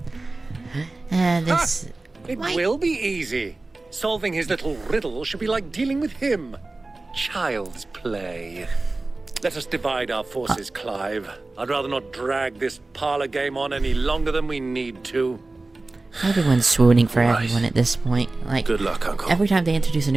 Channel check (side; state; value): left; quieter; 3.2 dB